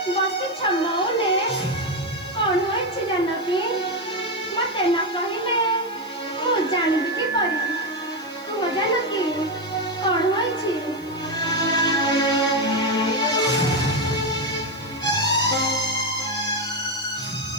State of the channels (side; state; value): right; noise; hiss, 26 dB below the sound